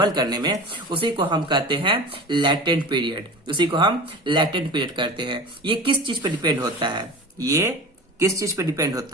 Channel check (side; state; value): both; normal; correlation 0.34